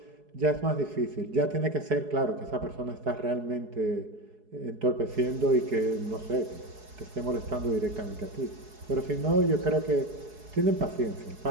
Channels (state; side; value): late; left; 4.7 ms